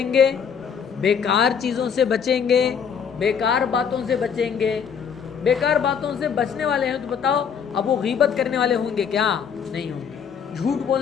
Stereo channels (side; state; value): right; quieter; 7.1 dB